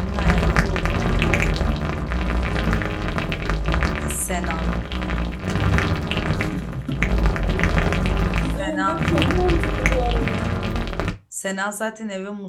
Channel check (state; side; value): identical; both; correlation 1.00